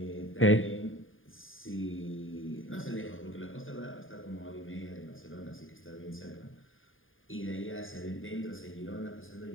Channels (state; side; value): late; right; 0.59 ms